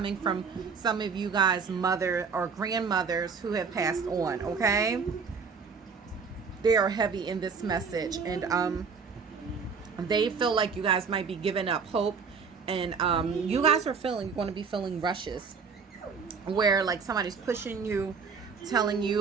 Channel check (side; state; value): left; quieter; 5.6 dB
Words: from some of you guys' mother or grandmothers who have passed on. Okay, they are heavy in this message, and they feel like you guys might be giving up hope, and you guys are going to be feeling rushes where like somebody's pushing you, telling you